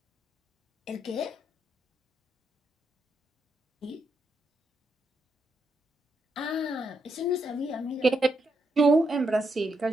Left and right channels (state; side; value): normal; both; correlation 0.80